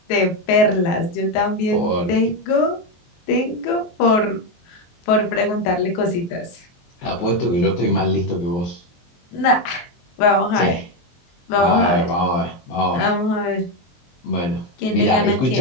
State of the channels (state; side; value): late; right; 23 ms